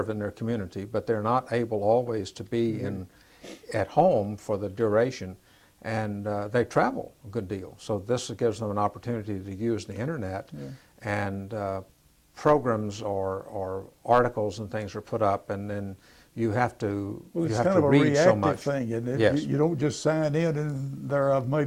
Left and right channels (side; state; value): both; identical; correlation 1.00